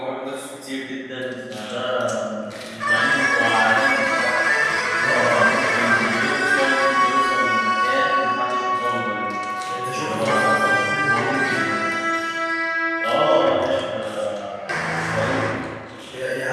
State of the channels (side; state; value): both; identical; correlation 1.00